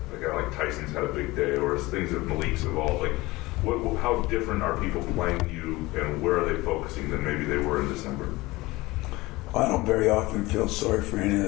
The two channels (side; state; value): right; quieter; 20.7 dB